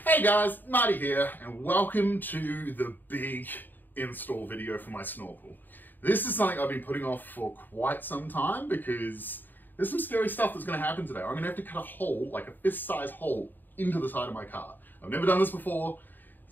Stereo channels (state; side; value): late; right; 0.090 ms